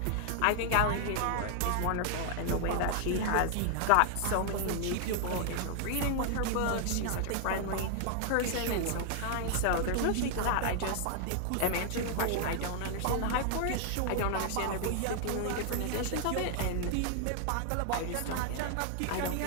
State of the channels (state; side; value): different; both; correlation 0.00